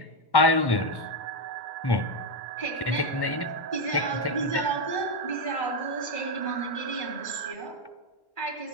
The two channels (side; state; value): right; late; 1.1 ms